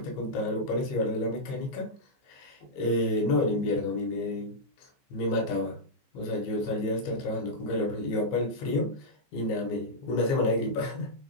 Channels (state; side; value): late; right; 15 ms